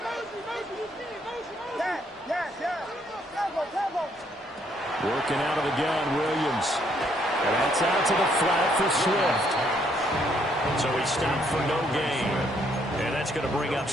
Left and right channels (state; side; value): normal; both; correlation 0.70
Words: Working out of the gun, Williams. And that's out to the flat for Swift. So he stopped for no gain. And that's going to bring up